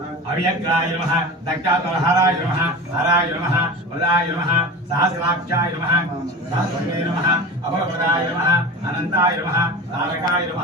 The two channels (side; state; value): both; normal; correlation 0.32